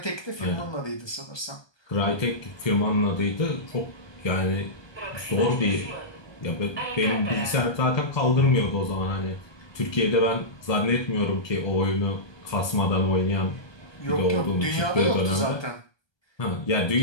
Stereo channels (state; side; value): late; right; 1.2 ms